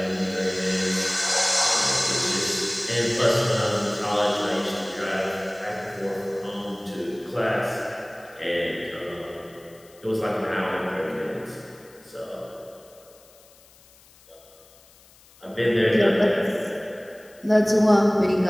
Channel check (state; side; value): noise; left; hiss, 27 dB below the sound